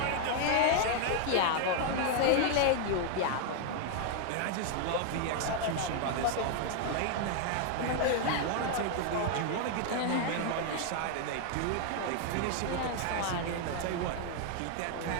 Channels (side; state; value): both; different; correlation 0.00